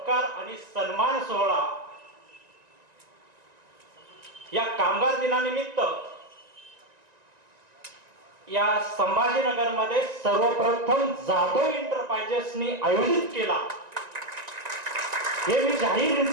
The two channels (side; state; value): left; late; 1.9 ms